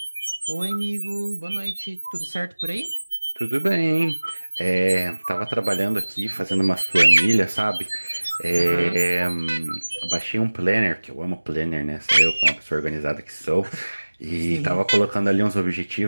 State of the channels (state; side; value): inverted; both; correlation -1.00